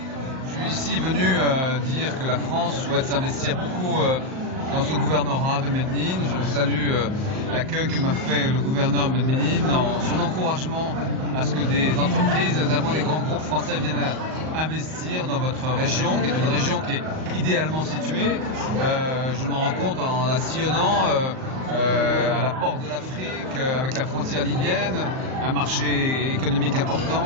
Je suis ici venu dire que la France souhaite s'investir beaucoup dans ce gouvernorat de Médine. Je salue l'accueil que m'a fait le gouverneur de Médine, dans son encouragement à ce que des entreprises, notamment des grands groupes français, viennent investir dans votre région, qui est une région qui est idéalement située. Je me rends compte en la sillonnant à la porte de l'Afrique, avec la frontière libyenne, un marché économique important,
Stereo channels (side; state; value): left; late; 38 ms